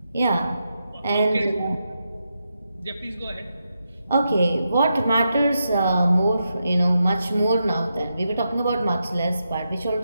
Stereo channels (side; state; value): both; inverted; correlation -0.85